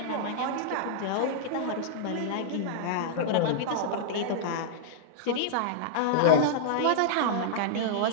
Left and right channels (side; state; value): both; different; correlation -0.02